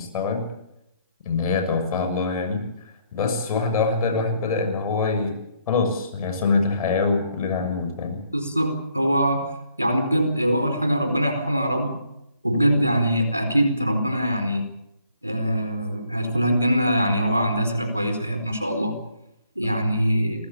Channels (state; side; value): inverted; both; correlation -0.70